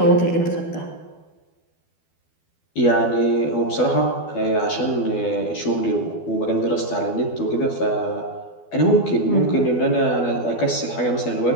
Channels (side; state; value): right; late; 12 ms